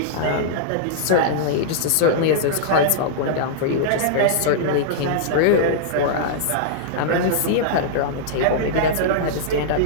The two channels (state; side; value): different; both; correlation -0.02